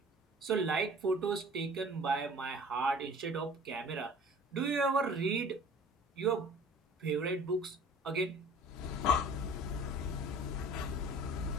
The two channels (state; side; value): normal; both; correlation 0.46